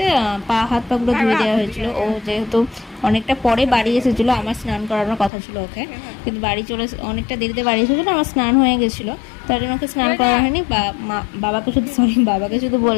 হাত পাগুলো ধুয়ে দেওয়া হয়েছিল। ও যেহেতু অনেকটা পরে বাড়ি এসেছিলো, আমার স্নান করানোর কথা ছিল ওকে, কিন্তু বাড়ি চলে অনেকটা দেরিতে বাড়ি এসেছিলো, আমার স্নান হয়ে গেছিলো। তার জন্য ওকে স্নান করা হয়নি। বাবাকে শুধু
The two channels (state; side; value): drops out; right; at 5.3 s